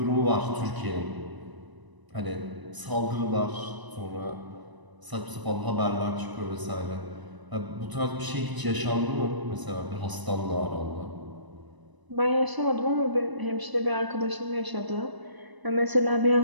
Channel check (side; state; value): left; late; 1.0 ms